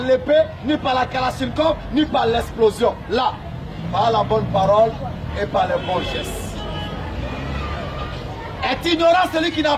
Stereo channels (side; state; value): both; identical; correlation 1.00